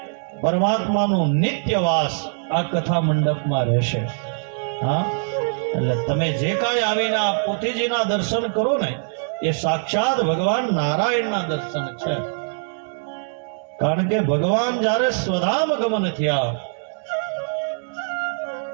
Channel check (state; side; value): silent; left; digital silence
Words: પરમાત્માનું નિત્યવાસ આ કથા મંડપમાં રહેશે. એટલે તમે જે કાંઈ આવીને આ પોથીજીના દર્શન કરો ને એ સાક્ષાત ભગવાન નારાયણના દર્શન છે. કારણ કે ભગવાન જ્યારે સ્વધામ ગમન થયા